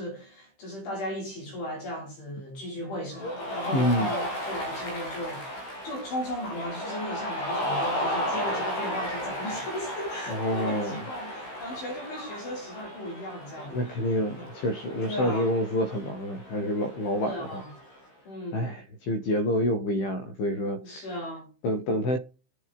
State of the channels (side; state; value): right; late; 15 ms